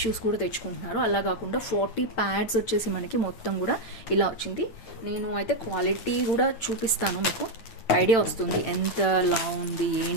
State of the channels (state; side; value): late; right; 8.9 ms